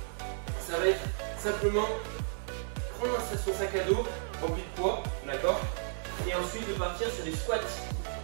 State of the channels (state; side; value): silent; left; 56 dB below the other